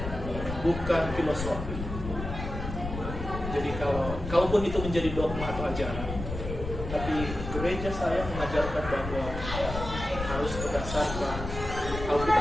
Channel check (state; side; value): noise; left; rumble, 7 dB below the sound